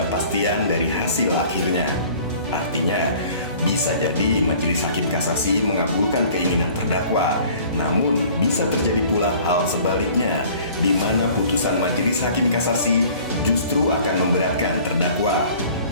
dari hasil akhirnya. Artinya, bisa jadi majelis hakim kasasi mengabulkan keinginan terdakwa, namun bisa terjadi pula hal sebaliknya, di mana putusan majelis hakim kasasi justru akan memberatkan terdakwa.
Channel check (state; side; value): inverted; both; correlation -0.50